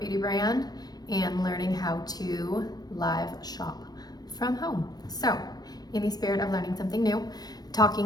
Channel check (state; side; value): late; right; 0.19 ms